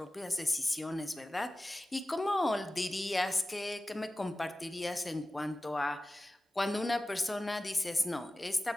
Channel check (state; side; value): normal; both; correlation 0.96